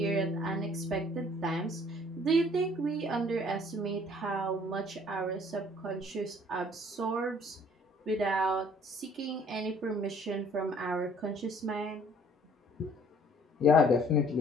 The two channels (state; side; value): normal; both; correlation 0.57